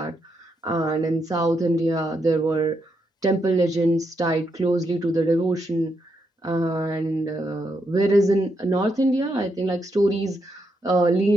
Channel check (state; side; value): normal; both; correlation 0.80